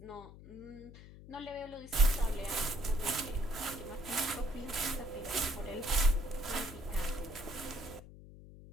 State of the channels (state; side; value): noise; left; hum, 17 dB below the sound